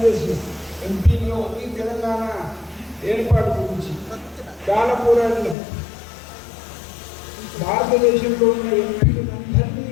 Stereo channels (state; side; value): drops out; right; at 5.6 s